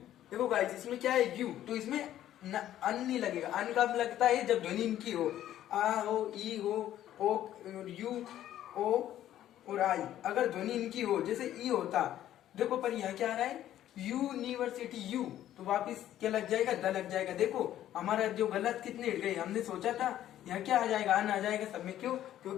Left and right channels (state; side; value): quieter; right; 12.2 dB